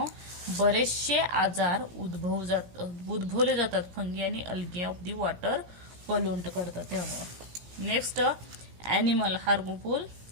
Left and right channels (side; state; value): left; late; 17 ms